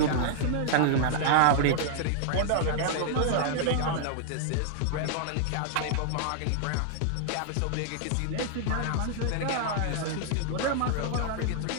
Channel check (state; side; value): different; both; correlation -0.01